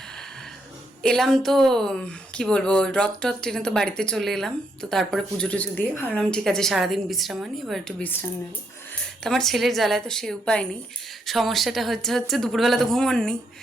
এলাম তো কি বলবো, রথ ট্রেনে তো বাড়িতে চলে এলাম। তো তারপরে পুজো টুজো দিয়ে ভাবলাম ঠিক আছে সারাদিন বিশ্রাম আনি, এবার একটু বিশ্রাম নেব। তো আমার ছেলের জ্বালায় তো সে উপায় নেই। সমস্যাটা হচ্ছে দুপুরবেলা তো ঘুমোননি,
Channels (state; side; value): normal; both; correlation 0.76